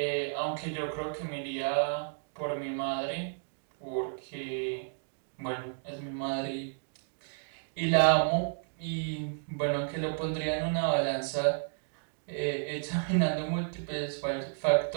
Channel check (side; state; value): left; silent; digital silence